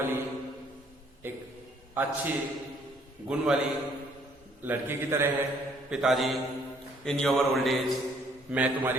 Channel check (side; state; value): both; normal; correlation 0.64